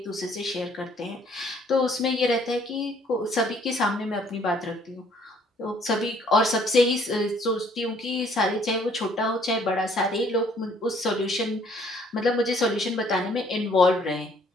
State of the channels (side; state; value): both; normal; correlation 0.62